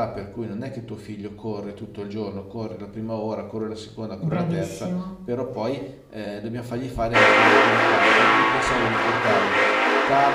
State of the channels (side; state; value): both; identical; correlation 1.00